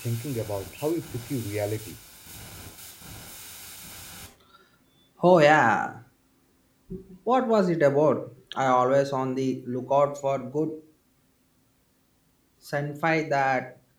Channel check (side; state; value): both; identical; correlation 1.00